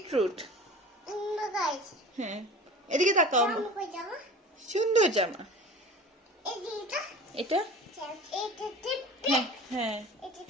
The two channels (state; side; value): normal; both; correlation 0.39